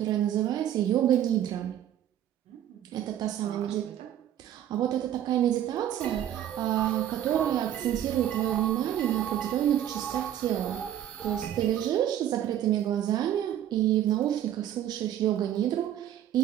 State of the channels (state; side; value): quieter; left; 11.2 dB